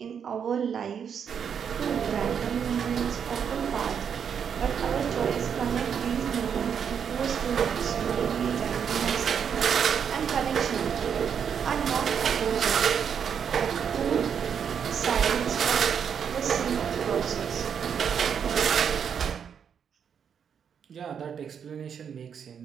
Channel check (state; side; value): quieter; left; 7.5 dB